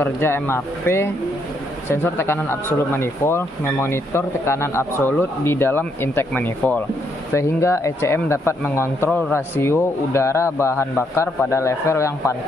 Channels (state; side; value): normal; both; correlation 0.74